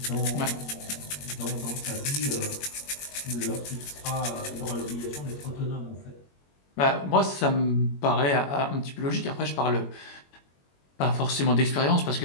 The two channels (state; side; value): late; right; 21 ms